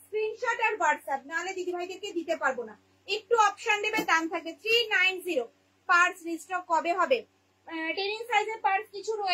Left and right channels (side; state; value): both; identical; correlation 1.00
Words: স্ক্রিনশট আর হোয়াটসঅ্যাপ, নাহলে দিদিভাইদেরকে দিতে পারবো না। একটু অপশন দেবে, দাম থাকবে 390। পার্স রিস্টক কবে হবে? 10 ইঞ্চ সাইজের পার্স কিছু